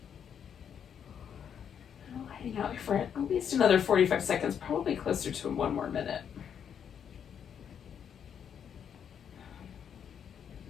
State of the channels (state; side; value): quieter; right; 8.1 dB